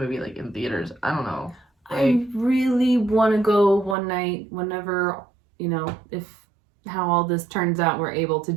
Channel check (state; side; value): drops out; left; at 4.0 s